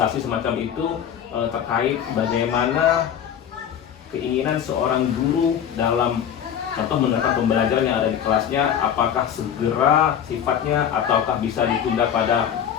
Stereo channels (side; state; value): right; quieter; 9.0 dB